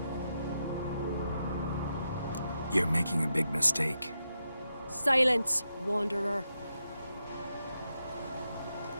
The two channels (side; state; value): both; inverted; correlation -0.86